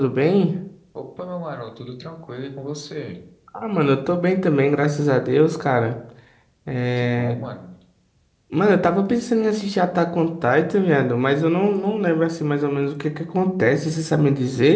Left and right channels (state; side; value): identical; both; correlation 1.00